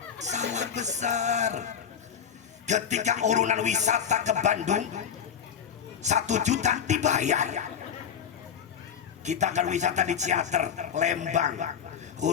salah besar. Ketika urunan wisata ke Bandung 1 juta dibayar. Kita akan wisata di Ciater, Lembang,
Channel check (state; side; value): quieter; right; 8.0 dB